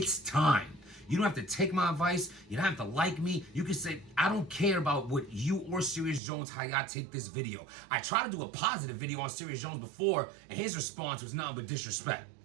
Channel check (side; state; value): left; drops out; at 6.2 s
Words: time. You don't have to take my advice. You don't have to like me. You can say, I don't care about what you or Serious Jones, how y'all take this video. I tried to do a positive video on Serious Jones before, and his response was nothing but disrespect.